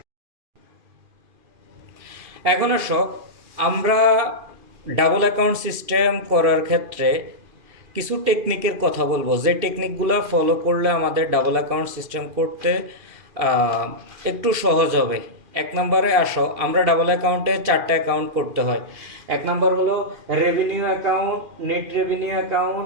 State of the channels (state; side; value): late; left; 2.4 ms